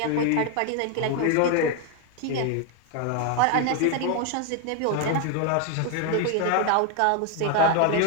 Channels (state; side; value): different; both; correlation 0.01